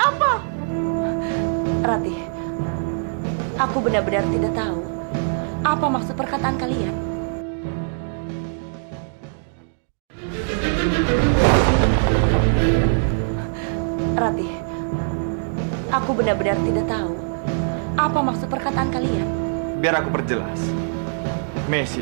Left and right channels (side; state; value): left; silent; digital silence